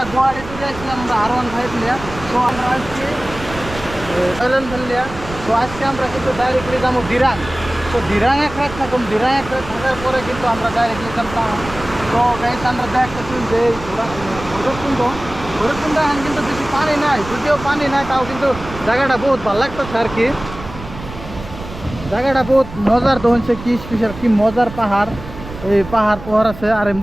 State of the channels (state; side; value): noise; right; rumble, 13 dB below the sound